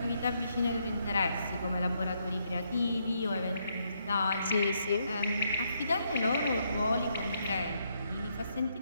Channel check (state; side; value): inverted; both; correlation -0.76